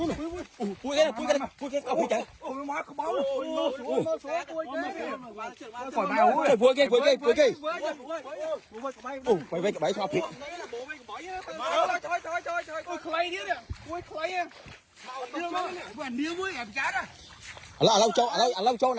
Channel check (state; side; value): identical; both; correlation 1.00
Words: pui cái pui chạy pui cái mày về cái bẫy sao thiệt lâu chỗ